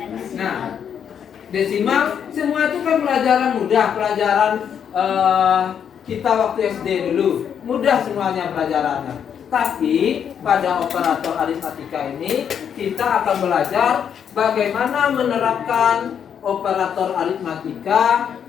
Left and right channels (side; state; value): right; quieter; 8.1 dB